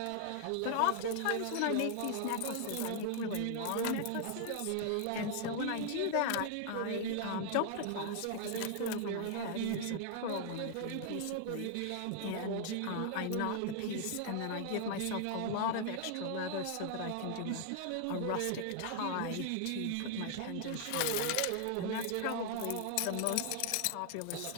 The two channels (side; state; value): both; different; correlation 0.00